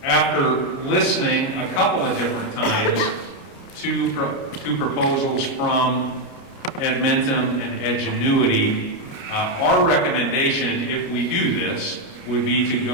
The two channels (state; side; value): late; right; 29 ms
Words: after listening a couple of different times to proposals from Edmentum and Edgenuity, our recommendation, if we do this, would be to